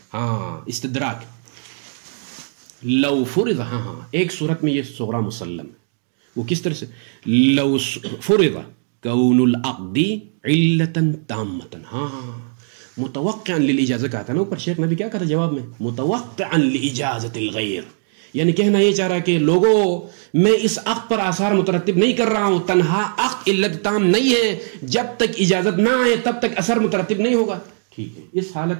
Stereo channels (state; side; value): silent; left; digital silence